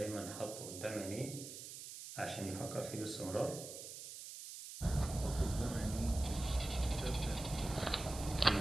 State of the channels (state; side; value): noise; right; hiss, 10 dB below the sound